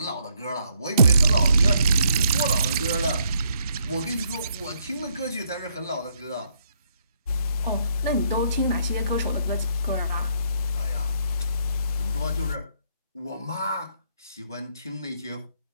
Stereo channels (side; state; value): both; inverted; correlation -0.71